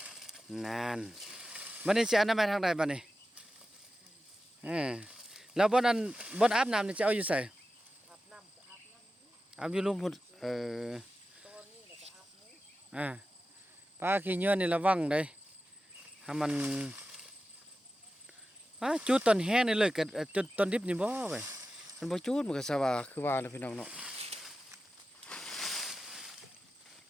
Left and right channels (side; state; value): both; normal; correlation 0.93